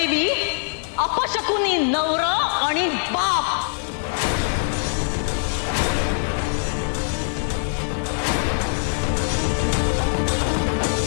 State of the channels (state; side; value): silent; right; digital silence